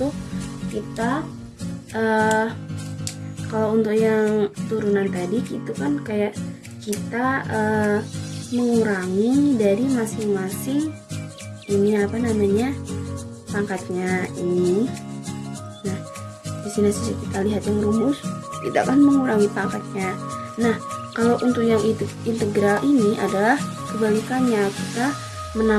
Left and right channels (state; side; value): identical; both; correlation 1.00